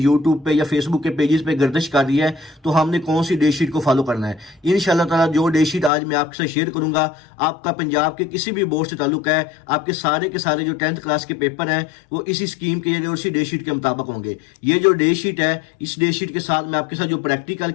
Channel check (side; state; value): right; drops out; at 5.9 s